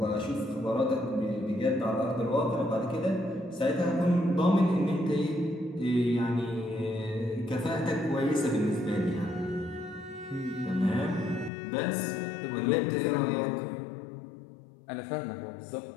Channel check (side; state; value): right; drops out; at 11.5 s